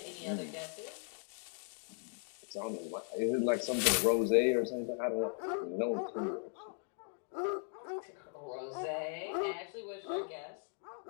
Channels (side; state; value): right; silent; 53 dB below the other